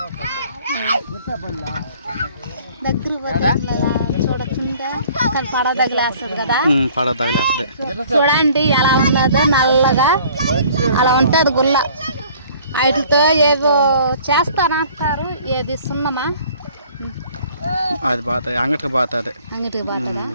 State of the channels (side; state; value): both; inverted; correlation -0.54